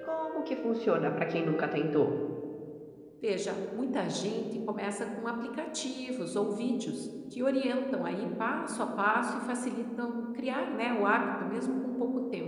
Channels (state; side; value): identical; both; correlation 1.00